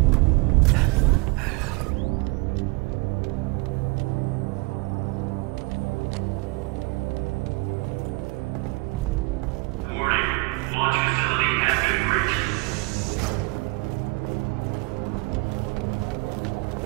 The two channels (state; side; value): quieter; left; 26.7 dB